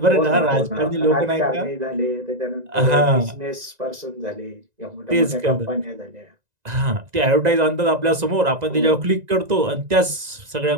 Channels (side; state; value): left; late; 1.9 ms